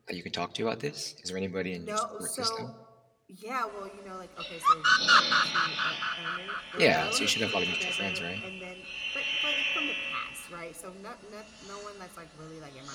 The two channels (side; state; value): both; identical; correlation 1.00